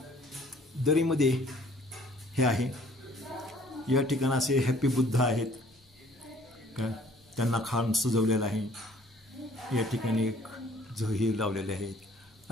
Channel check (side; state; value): both; normal; correlation 0.56